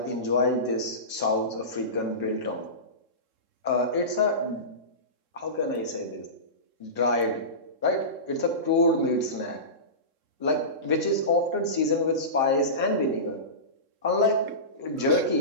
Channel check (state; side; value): late; left; 3.7 ms